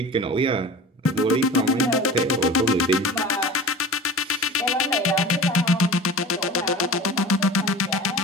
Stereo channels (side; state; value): both; normal; correlation 0.36